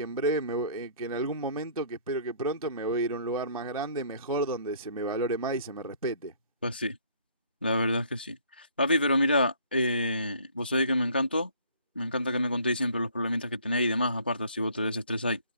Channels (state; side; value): inverted; both; correlation -0.57